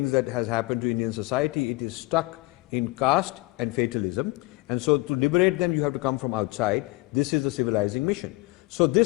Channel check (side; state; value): right; quieter; 22.3 dB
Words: that has happened to Indian society, it is stuck in caste and fatalism. And so to liberate them, you have to come from outside. This is a civilizing mission. So